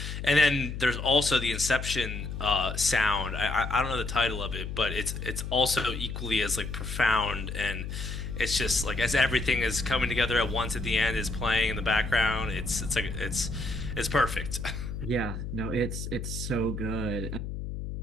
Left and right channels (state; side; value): noise; left; hum, 6 dB below the sound